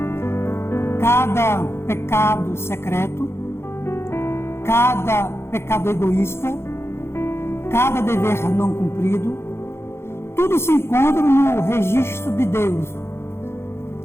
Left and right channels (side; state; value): right; late; 0.12 ms